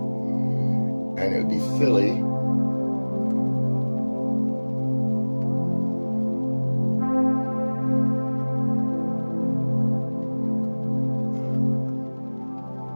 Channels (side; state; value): both; inverted; correlation -1.00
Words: And it would be silly.